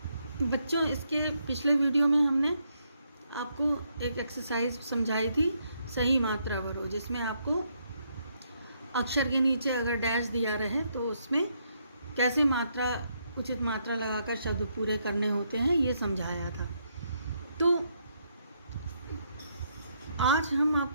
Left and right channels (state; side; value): inverted; both; correlation -0.76